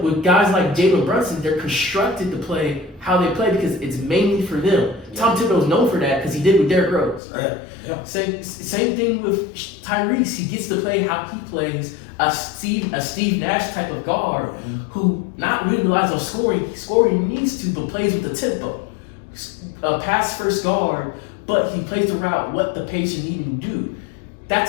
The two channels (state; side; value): drops out; right; at 7.2 s